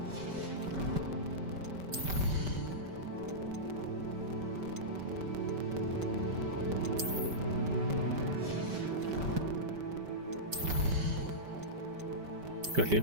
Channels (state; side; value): late; left; 5.1 ms